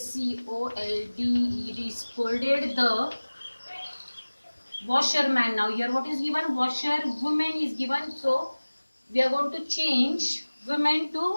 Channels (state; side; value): inverted; both; correlation -1.00